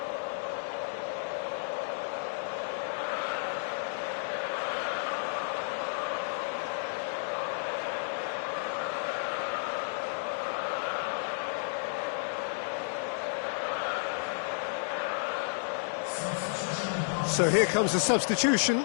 So here comes the substitution.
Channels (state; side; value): silent; right; digital silence